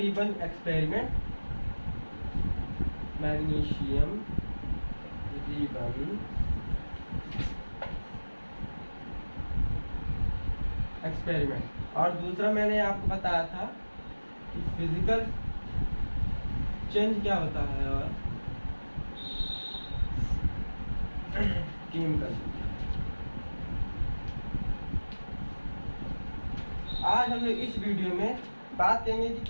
experiment, magnesium ribbon experiment, और दूसरा मैंने आपको बताया था कि फिजिकल चेंज क्या होता है और केमिकल। आज हम लोग इस वीडियो में बात करेंगे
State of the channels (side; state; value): both; inverted; correlation -1.00